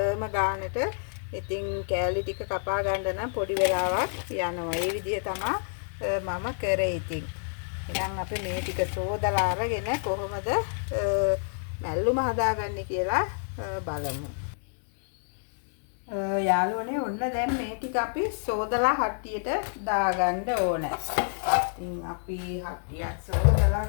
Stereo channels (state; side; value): silent; right; digital silence